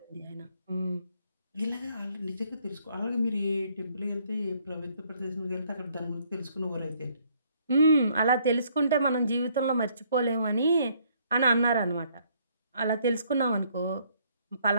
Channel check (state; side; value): inverted; both; correlation -0.66